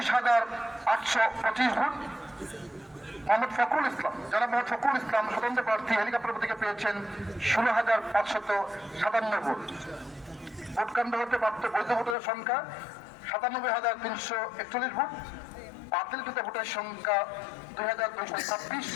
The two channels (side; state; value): right; drops out; at 12.2 s